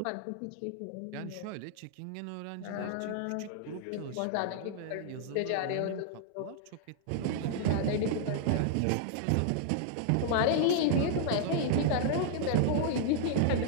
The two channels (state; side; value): different; both; correlation -0.01